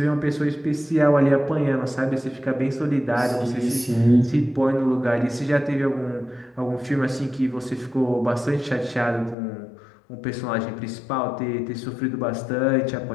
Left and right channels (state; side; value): drops out; right; at 9.3 s